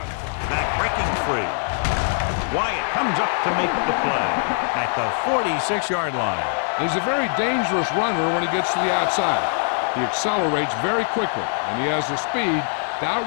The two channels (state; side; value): silent; right; 62 dB below the other